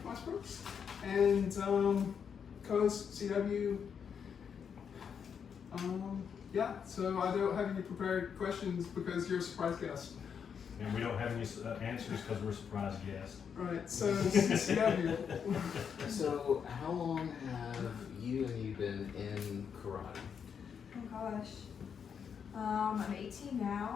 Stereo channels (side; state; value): right; quieter; 7.1 dB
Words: Westbrooks, and co-host CW. Yeah, so I don't have any prepared questions because you're a surprise guest. And we don't have any answers because we're surprised guests. Right, so CW. So, how long have you been in karate? Oh gosh. I'm 18